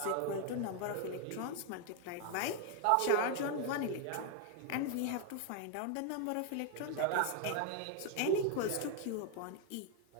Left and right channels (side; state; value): both; different; correlation 0.01